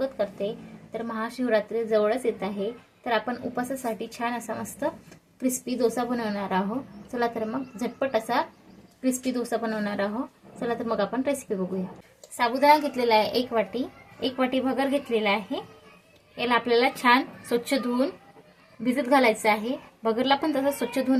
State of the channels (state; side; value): identical; both; correlation 1.00